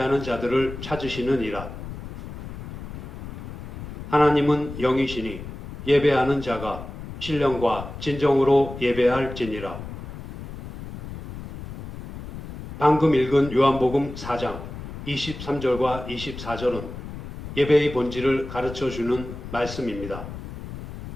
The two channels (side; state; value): left; noise; rumble, 11 dB below the sound